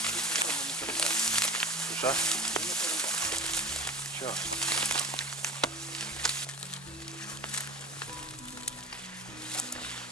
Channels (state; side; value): normal; both; correlation 0.37